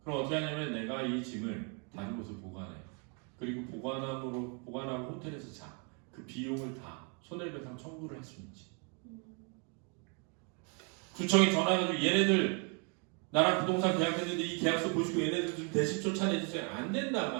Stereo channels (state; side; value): quieter; left; 36.7 dB